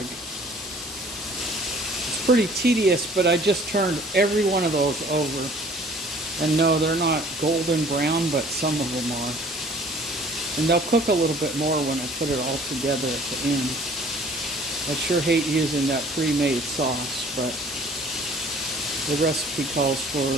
It's pretty tedious, but I just turned every one of those over. And no, they're not golden brown, but some of them are. And they'll cook a little bit more when I put it all together at the end. I sure hate using that pre-made sauce, but the recipe calls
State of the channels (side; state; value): both; normal; correlation 0.52